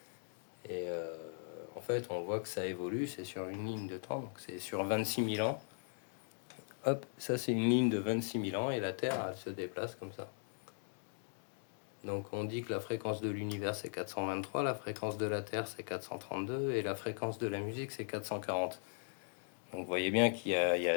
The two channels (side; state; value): right; silent; digital silence